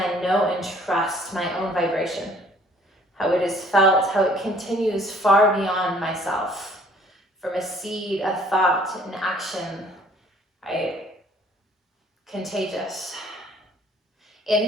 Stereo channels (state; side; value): normal; both; correlation 0.57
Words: know, and trust my own vibration. How it is felt, how it continues far beyond myself. From a seed, a thought, an action, right? Contagious.